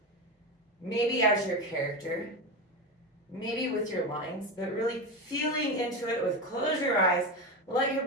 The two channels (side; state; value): both; normal; correlation 0.19